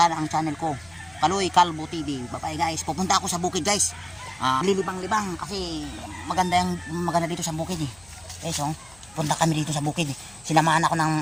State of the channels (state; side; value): noise; left; hum, 26 dB below the sound